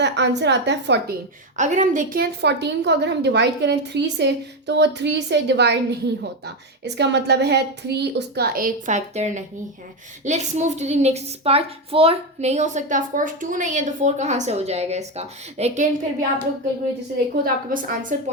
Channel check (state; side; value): normal; both; correlation 0.11